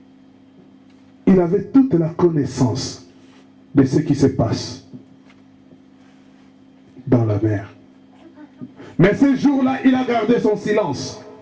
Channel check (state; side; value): identical; both; correlation 1.00